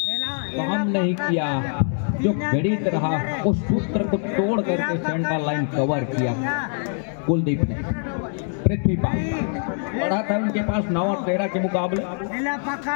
काम नहीं किया, जो गणित रहा उस सूत्र को तोड़ करके सेंटर लाइन कवर किया कुलदीप ने। पृथ्वीपाल बढ़ा था उनके पास 9 और 13 के मुकाबले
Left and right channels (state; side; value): silent; right; 57 dB below the other